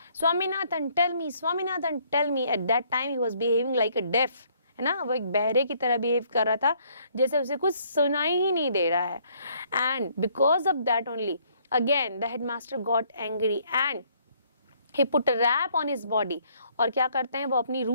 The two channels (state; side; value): inverted; both; correlation -0.65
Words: Swaminathan tell me, Swaminathan tell me. At that time he was behaving like a deaf, है ना, वो एक बहरे की तरह behave कर रहा था, जैसे उसे कुछ सुनाई ही नहीं दे रहा है। And because of that only again the headmaster got angry and he put a rap on his body. और क्या करते हैं वो अपनी